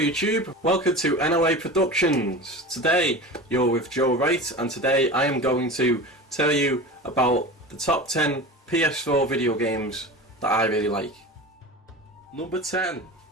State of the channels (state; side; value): normal; both; correlation 0.31